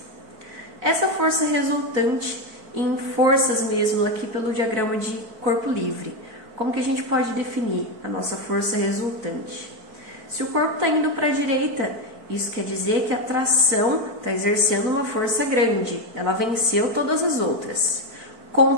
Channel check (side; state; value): left; late; 4.5 ms